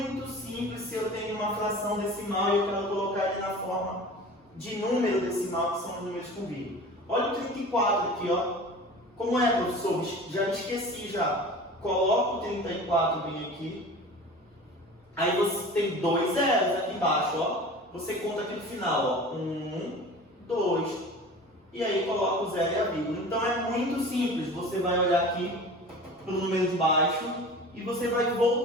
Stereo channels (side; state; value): both; normal; correlation 0.38